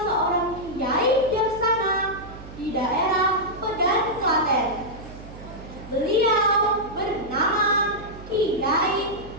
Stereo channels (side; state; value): right; noise; hum, 15 dB below the sound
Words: seorang kiai bijaksana di daerah Pedan, Klaten. Beliau bernama Kiai